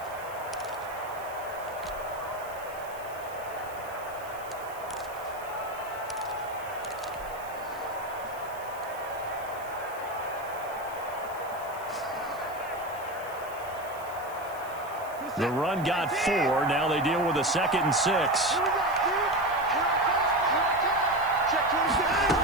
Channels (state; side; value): noise; right; hiss, 20 dB below the sound